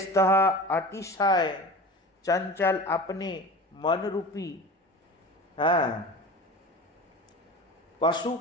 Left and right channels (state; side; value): normal; both; correlation 0.35